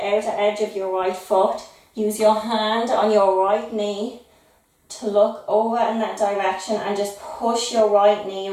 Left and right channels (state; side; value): identical; both; correlation 1.00